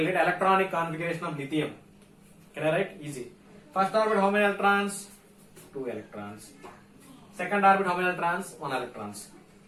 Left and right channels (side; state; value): both; identical; correlation 1.00